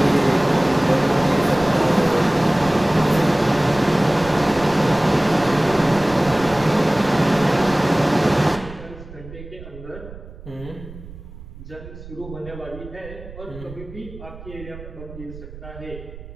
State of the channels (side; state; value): right; noise; rumble, 15 dB below the sound